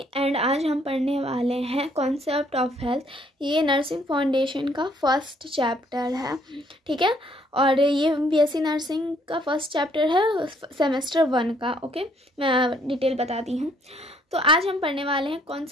एंड आज हम पढ़ने वाले हैं कॉन्सेप्ट ऑफ हेल्थ। ये नर्सिंग फाउंडेशन का फर्स्ट चैप्टर है, ठीक है। और ये बीएससी नर्सिंग का फर्स्ट चैप्टर है सेमेस्टर 1 का। ओके, मैं डिटेल बताती हूँ। तो आज हम पढ़ने वाले हैं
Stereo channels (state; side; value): normal; both; correlation 0.65